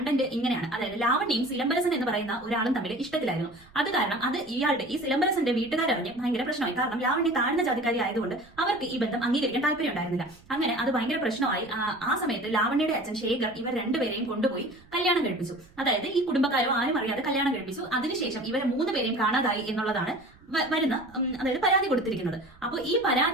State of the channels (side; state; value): right; noise; rumble, 26 dB below the sound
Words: ഇങ്ങനെയാണ്. അതായത് ലാവണ്യയും സിലംബരസൻ എന്ന് പറയുന്ന ഒരാളും തമ്മിൽ ഇഷ്ടത്തിലായിരുന്നു. അത് കാരണം അത് ഈ സിലംബരസന്റെ വീട്ടുകാരറിഞ്ഞ് ഭയങ്കര പ്രശ്നമായി. കാരണം ലാവണ്യ താഴ്ന്ന ജാതിക്കാരി ആയതുകൊണ്ട് അവർക്ക് ഈ ബന്ധം അംഗീകരിക്കാൻ താല്പര്യം ഉണ്ടായിരുന്നില്ല. അങ്ങനെ അത് ഭയങ്കര പ്രശ്നമായി. ആ സമയത്ത് ലാവണ്യയുടെ അച്ഛൻ ശേഖർ ഇവർ രണ്ടുപേരെയും കൊണ്ടുപോയി കല്യാണം കഴിപ്പിച്ചു. അതായത് ഈ കുടുംബക്കാരോ ആരും അറിയാതെ കല്യാണം കഴിപ്പിച്ചു. അതിനുശേഷം ഇവരെ 3 പേരെയും കാണാതായി എന്നുള്ളതാണ് അതായത് പരാതി കൊടുത്തിരിക്കുന്നത്. അപ്പോൾ ഈ